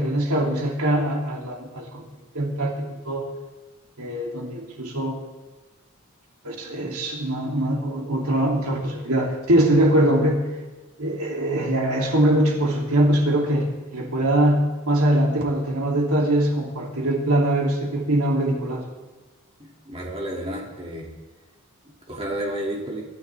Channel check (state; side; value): normal; both; correlation 0.51